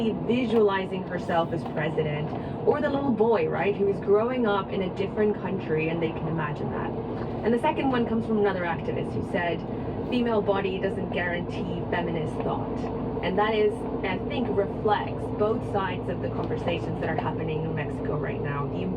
visualizing herself as president, or the little boy, right, who is growing up in a different country and they can imagine that. And the second one comes from another activist who said, female body doesn't guarantee feminist thought. And that is, I think, reflects both sides of the conversations that are happening in Mexico right now. The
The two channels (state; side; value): identical; both; correlation 1.00